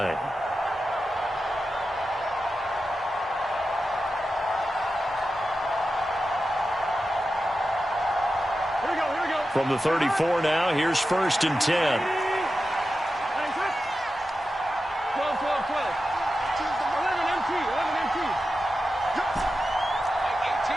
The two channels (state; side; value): normal; both; correlation 0.91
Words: Here we go, here we go. From the 34 now, here's 1st and 10. 12, 12, 12. 11 MT, 11 MT. Mike 18,